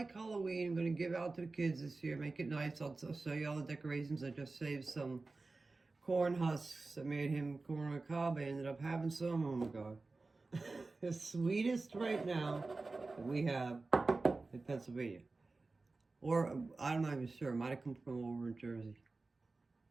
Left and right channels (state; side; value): quieter; left; 3.6 dB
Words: Halloween. I'm going to give out to the kids this year. Make it nice. I'll show you all the decorations. I just saved some corn husks. I made him corn on the cob. I ended up having some. Oh my God. The sweetest right now that we have in Pennsylvania. Or, I'm not even sure. It might have come from over in Jersey.